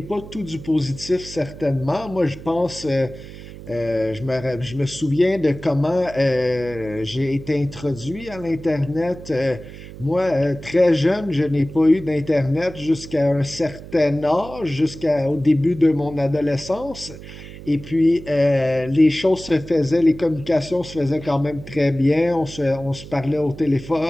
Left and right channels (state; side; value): noise; right; hum, 14 dB below the sound